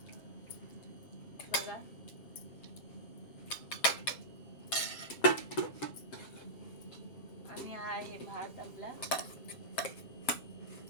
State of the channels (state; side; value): late; right; 7.5 ms